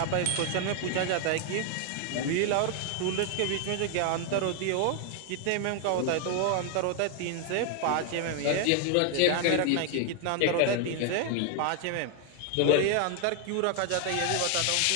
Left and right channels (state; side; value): different; both; correlation 0.00